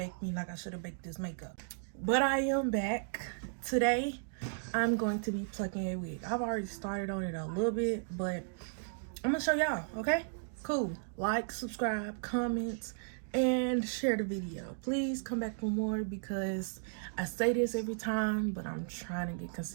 me like I should have baked this makeup. But I am back. Today, I'm going to be plucking a wig. I've already started on it a little bit, but I'm gonna show y'all, okay? Cool. Like, subscribe, comment, and share the video. Please come back for more because I say this every time, but I'm trying to get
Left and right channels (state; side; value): silent; left; digital silence